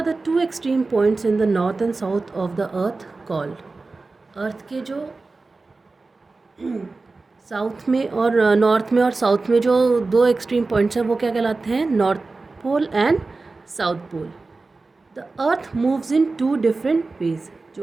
the two extreme points in the north and south of the earth called? अर्थ के जो साउथ में और नॉर्थ में और साउथ में जो दो एक्सट्रीम पॉइंट्स हैं वो क्या कहलाते हैं? North pole and south pole. The earth moves in two different ways.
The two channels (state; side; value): quieter; left; 3.7 dB